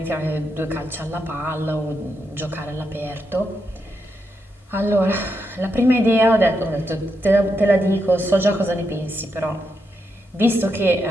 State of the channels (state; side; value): normal; both; correlation 0.83